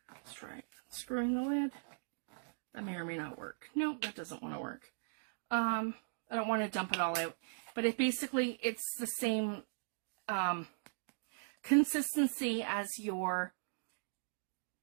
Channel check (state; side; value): silent; left; digital silence